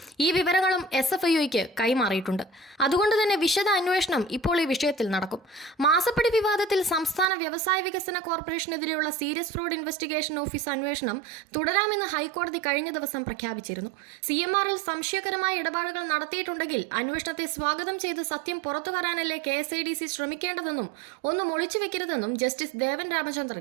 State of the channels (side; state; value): left; drops out; at 7.3 s